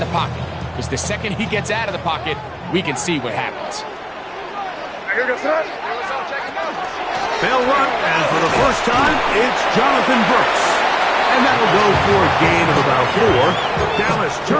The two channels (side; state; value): both; identical; correlation 1.00